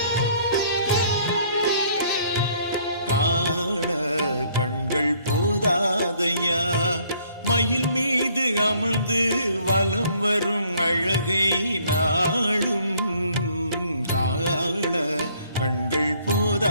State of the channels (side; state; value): both; inverted; correlation -0.62